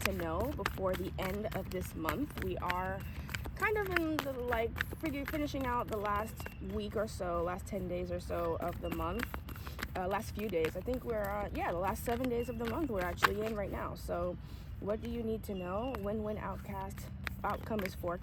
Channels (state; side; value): identical; both; correlation 1.00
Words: to know before the end of this month. We are kind of in the, finishing out the last week or so, last 10 days or so of the month. Last few days. I think we're, the last 7 days of the month we're actually in right now. So what do you need to know? Win-win outcome is